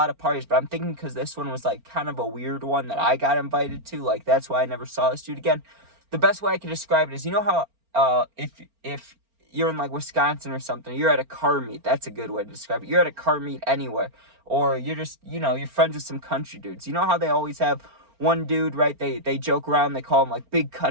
of parties, but I'm thinking because this one was, like, kind of a weird one that I got invited to. Like, that's why I never saw this dude again. The best way I can describe it is, you know how if you're in, like, Wisconsin or something, you're at a car meet. That's a good way to describe it. You're at a car meet anywhere. Or you're just, you know, you're friends with some country dudes. You know how they always have one dude, right? They joke around. They call him, like, Big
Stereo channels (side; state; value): left; late; 4.4 ms